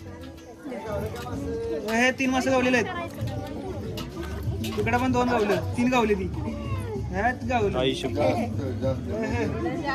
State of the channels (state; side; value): identical; both; correlation 1.00